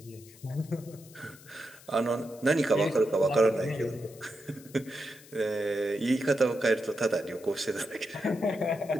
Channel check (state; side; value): noise; left; hiss, 22 dB below the sound